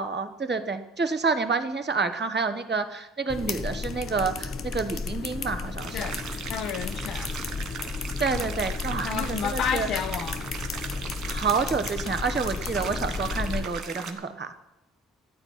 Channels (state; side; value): normal; both; correlation 0.46